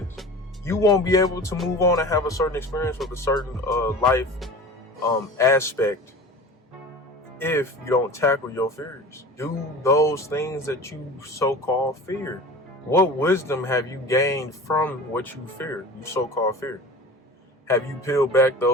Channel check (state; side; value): normal; both; correlation 0.37